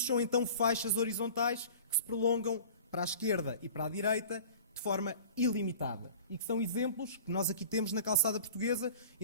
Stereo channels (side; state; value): both; inverted; correlation -0.42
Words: são então faixas horizontais que se prolongam para a esquerda e para a direita de forma ilimitada. E que são exemplos que nós aqui temos na calçada portuguesa